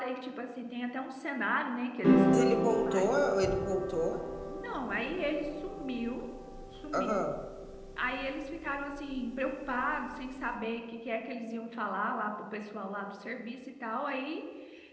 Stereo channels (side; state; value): both; identical; correlation 1.00